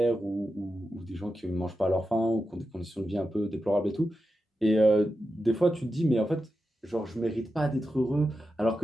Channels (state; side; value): normal; both; correlation 0.90